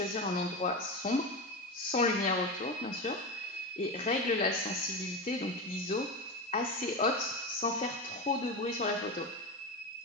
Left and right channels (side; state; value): both; normal; correlation 0.20